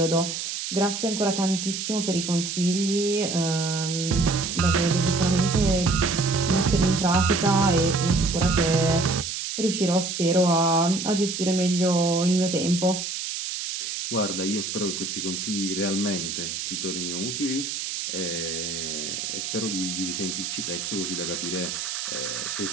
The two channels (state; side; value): noise; right; hiss, 4 dB below the sound